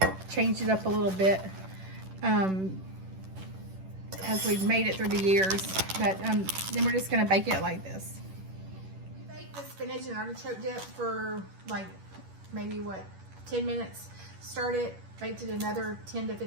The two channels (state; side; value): late; left; 10 ms